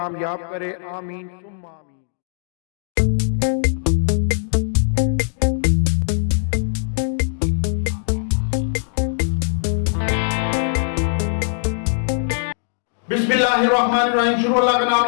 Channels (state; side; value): silent; right; digital silence